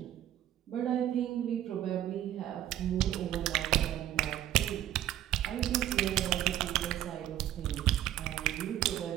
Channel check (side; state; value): left; quieter; 12.5 dB